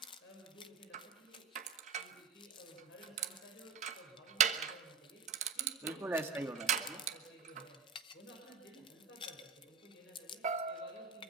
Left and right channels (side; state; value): left; quieter; 5.7 dB